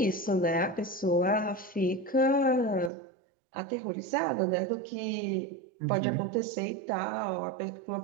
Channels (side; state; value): left; drops out; at 2.9 s